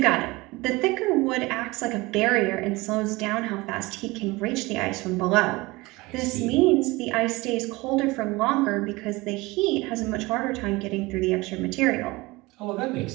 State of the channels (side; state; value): left; quieter; 22.1 dB